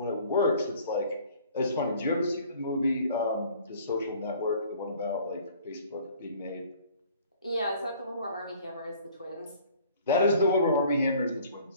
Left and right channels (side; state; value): both; inverted; correlation -0.53